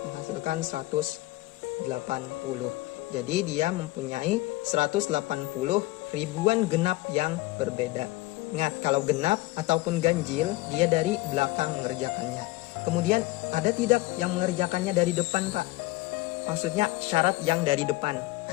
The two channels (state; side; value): quieter; right; 19.6 dB